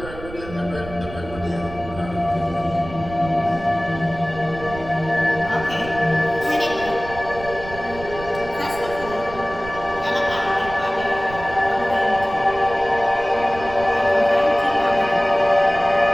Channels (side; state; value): right; noise; rumble, 14 dB below the sound